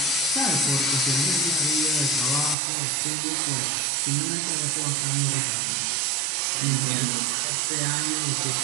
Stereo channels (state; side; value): drops out; left; at 2.6 s